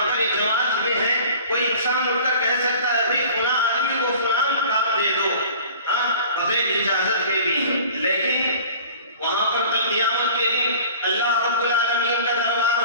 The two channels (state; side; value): inverted; both; correlation -0.45